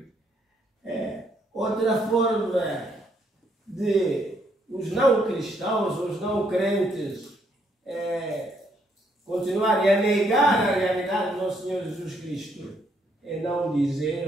outra forma de os não cristãos, os não crentes, continuarem a negar a realidade do nosso Senhor Jesus Cristo, é não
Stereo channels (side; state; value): both; normal; correlation 0.72